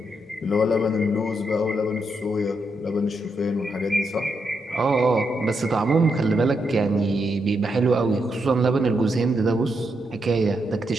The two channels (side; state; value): both; normal; correlation 0.81